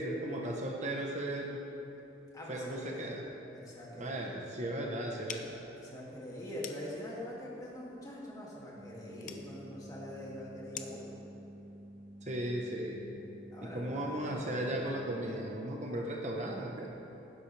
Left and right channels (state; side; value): normal; both; correlation 0.47